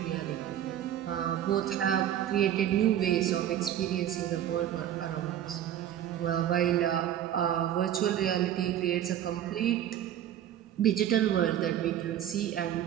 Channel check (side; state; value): left; quieter; 11.0 dB